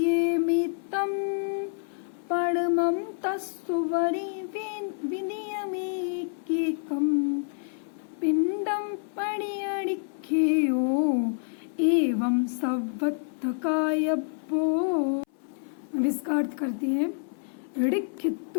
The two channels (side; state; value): right; silent; 59 dB below the other